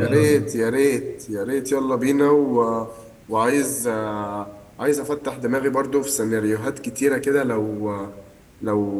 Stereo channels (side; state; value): both; identical; correlation 1.00